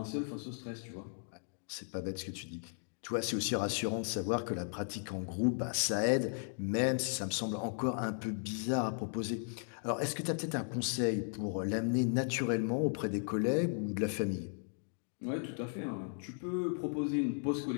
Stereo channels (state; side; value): silent; right; 54 dB below the other